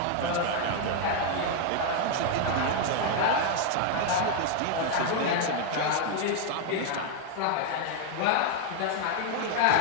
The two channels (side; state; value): both; different; correlation 0.00